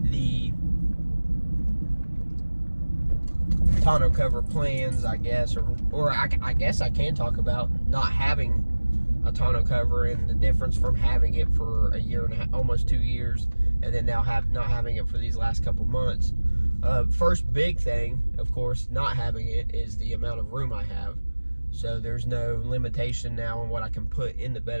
tonneau cover plans, I guess, or I guess I can talk about not having a tonneau cover and the difference from having it for a year and a half, almost 2 years, and then now not having it for these last couple months. First big thing, of course, not having it is the amount of room I have. So there's no limitation now on what I can put in the bed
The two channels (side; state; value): both; inverted; correlation -1.00